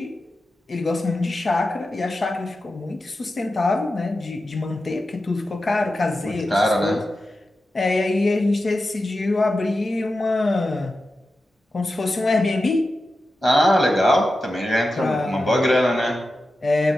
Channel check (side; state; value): both; normal; correlation 0.92